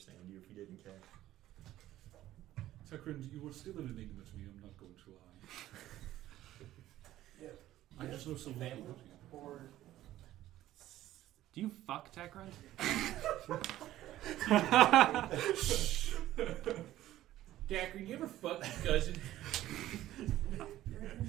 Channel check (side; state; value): left; quieter; 14.1 dB